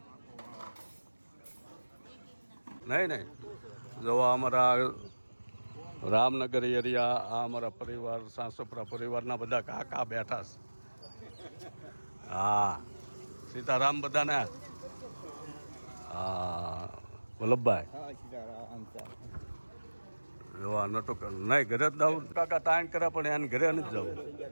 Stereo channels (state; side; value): inverted; both; correlation -1.00